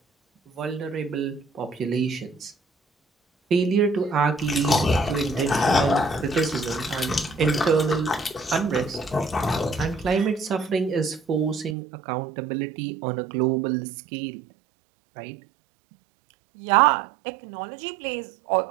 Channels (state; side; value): drops out; left; at 11.8 s